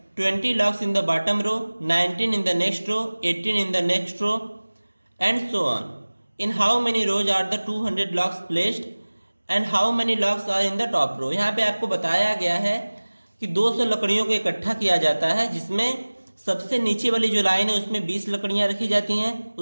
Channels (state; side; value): inverted; both; correlation -1.00